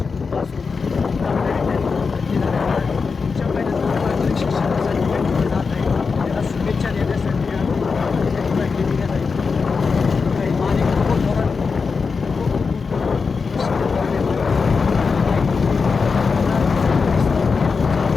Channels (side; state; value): right; quieter; 5.0 dB